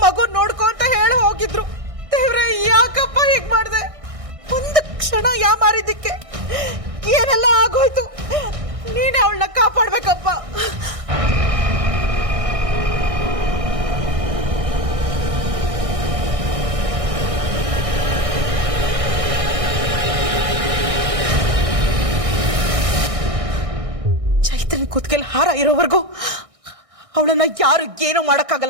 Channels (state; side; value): late; left; 1.6 ms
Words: ಮಗು ನೋಡ್ಕೊ ಅಂತ ಹೇಳಿ ಹೋಗಿದ್ರು. ದೇವ್ರೆ, ಯಾಕಪ್ಪ ಹೀಗ್ ಮಾಡ್ದೆ? ಒಂದು ಕ್ಷಣ ಯಾಮಾರಿದ್ದಕ್ಕೆ ಏನೆಲ್ಲ ಆಗೋಯ್ತು. ನೀನೇ ಅವಳನ್ನ ಕಾಪಾಡ್ಬೇಕಪ್ಪ. ಚೈತ್ರನ್ ಕುತ್ಕೆಲ್ ಹಾರ ಇರೋವರೆಗೂ ಅವಳನ್ನ ಯಾರು ಏನೂ